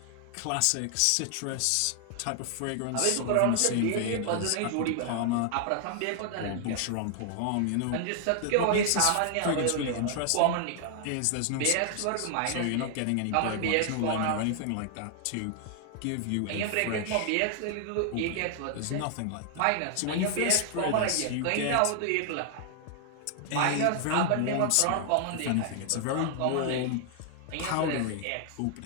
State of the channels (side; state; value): both; different; correlation 0.00